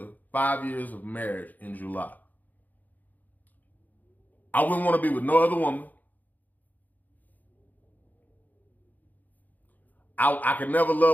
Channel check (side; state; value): right; late; 0.082 ms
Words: 5 years of marriage in July. I wouldn't want to be with no other woman. I could never